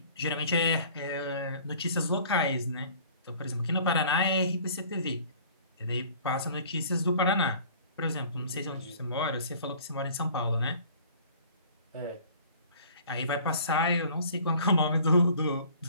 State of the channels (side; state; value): both; inverted; correlation -0.50